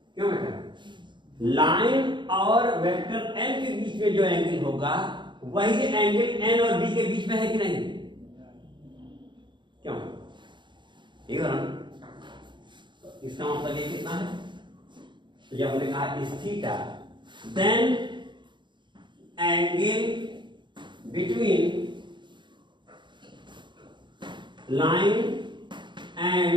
क्यों बेटा? लाइन और वेक्टर एन के बीच में जो एंगल होगा वही एंगल एन और बी के बीच में है कि नहीं? क्यों? ये इसका मतलब ये कितना है? तो जब हमने कहा इस theta, then angle between line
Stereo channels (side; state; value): left; late; 0.23 ms